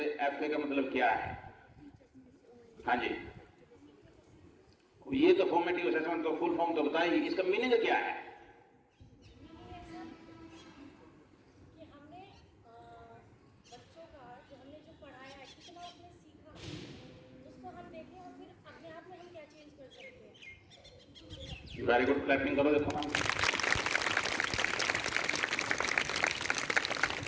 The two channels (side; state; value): both; identical; correlation 1.00